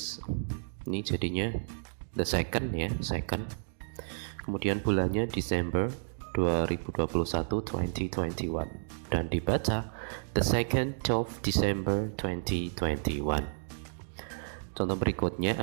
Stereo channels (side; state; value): left; silent; digital silence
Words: ini jadinya the second ya, second. Kemudian bulannya Desember 2021, 2021, dan dibaca the 2nd of December 2021. Contoh berikutnya